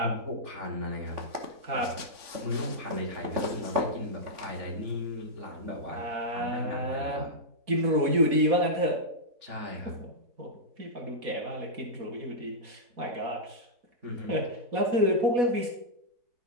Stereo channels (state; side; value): late; left; 4.1 ms